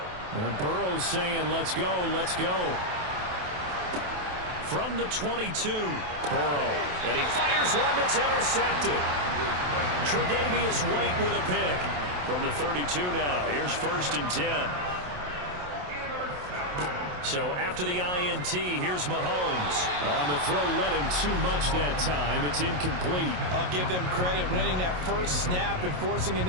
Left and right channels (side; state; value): left; late; 27 ms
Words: And Burrow's saying, let's go, let's go. From the 22, Burrow. And he fires one that's intercepted. Tre'Davious White with a pick. From the 32 now, here's 1st and 10. So after the INT, here's Mahomes. On the throw, led him too much that time. It's incomplete. I'll give them credit winning that first snap and forcing an